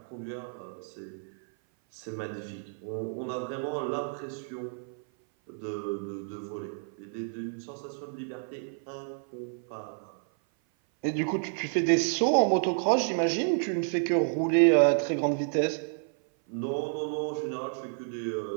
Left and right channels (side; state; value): left; silent; 56 dB below the other